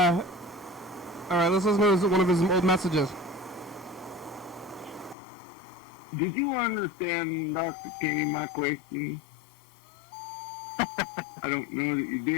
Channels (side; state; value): right; drops out; at 5.2 s